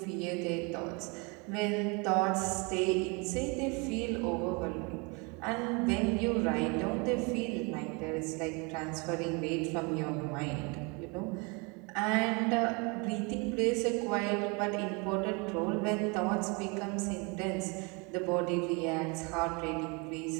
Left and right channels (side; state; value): left; quieter; 30.3 dB